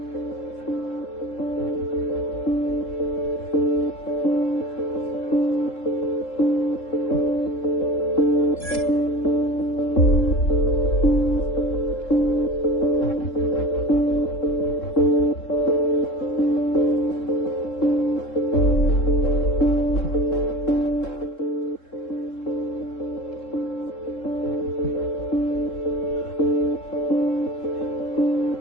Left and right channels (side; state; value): right; late; 3.7 ms